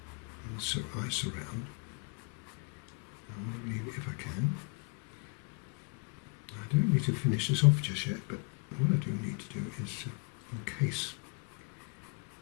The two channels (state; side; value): quieter; right; 34.8 dB